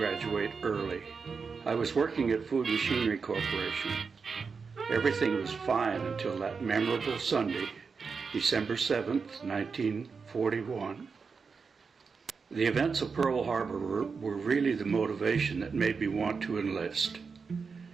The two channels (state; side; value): quieter; left; 5.2 dB